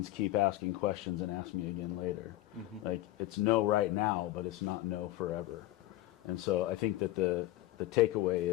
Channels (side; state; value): right; quieter; 15.8 dB